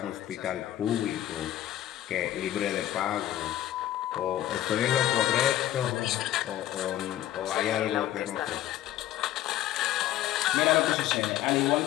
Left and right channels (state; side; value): quieter; right; 13.1 dB